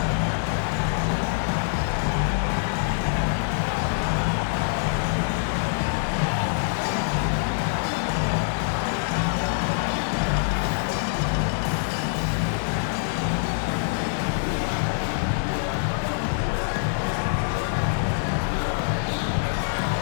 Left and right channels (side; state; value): right; silent; 58 dB below the other